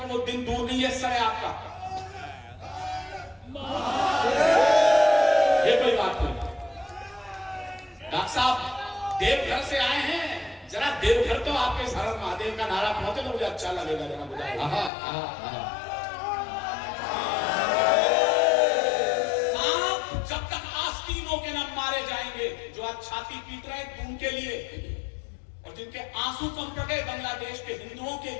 वो दिन दूर नहीं है, सर है आपका। ये कोई बात नहीं। डॉक्टर साहब देवघर से आए हैं, जरा देवघर तो आपके हर महादेव का नारा पहुंचे तो मुझे अच्छा लगेगा। जरा बुझाइए। सांप जब तक आस्तीनों के न मारे जाएंगे, जो आज छाती पीट रहे हैं उनके लिए, और जिनके आंसू कम पड़ गए बांग्लादेश के हिंदुओं के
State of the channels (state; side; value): drops out; right; at 14.9 s